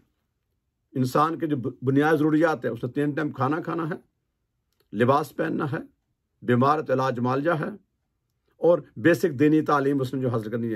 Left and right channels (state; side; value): identical; both; correlation 1.00